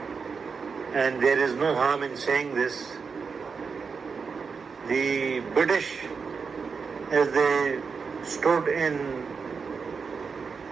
and there is no harm in saying this. The British, as they stood in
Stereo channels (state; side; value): quieter; left; 5.4 dB